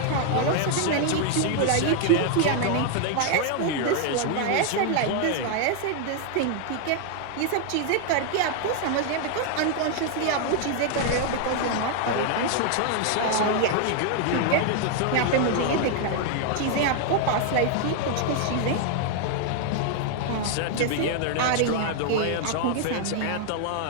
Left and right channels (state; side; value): different; both; correlation 0.00